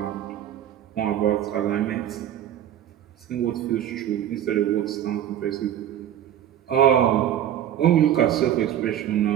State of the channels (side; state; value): left; quieter; 10.9 dB